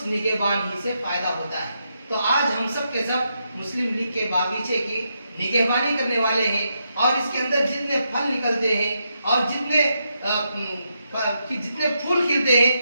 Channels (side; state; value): both; inverted; correlation -0.82